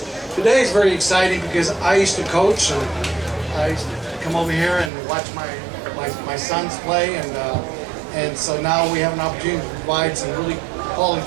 Today is very exciting because I used to coach, and I used to come over here and watch my sons play, and so now we have an opportunity to provide some really quality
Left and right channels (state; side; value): drops out; left; at 4.9 s